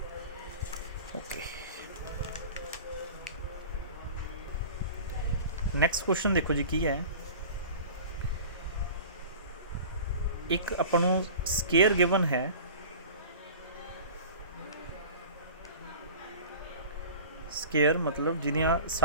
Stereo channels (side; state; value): both; inverted; correlation -0.38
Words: ओके नैक्सट क्वेश्चन देखो जी की है एक अपन स्केयर गिवन है स्केयर मतलब जिहदियां